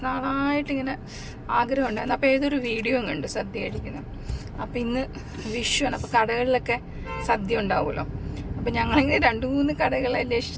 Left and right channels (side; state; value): both; identical; correlation 1.00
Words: നാളായിട്ട് ഇങ്ങനെ ആഗ്രഹം ഉണ്ടായിരുന്നു. അപ്പോൾ ഏതൊരു വീഡിയോ കണ്ട് സദ്യ കഴിക്കുന്നത്. അപ്പം ഇന്ന് വിഷുവാണ്. അപ്പോൾ കടകളിലൊക്കെ സദ്യ ഉണ്ടാവുമല്ലോ. അപ്പം ഞങ്ങളിങ്ങനെ 2-3 കടകളെ